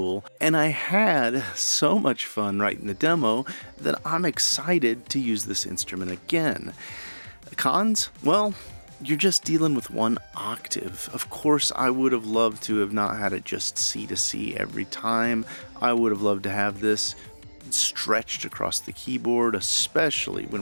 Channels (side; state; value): both; inverted; correlation -1.00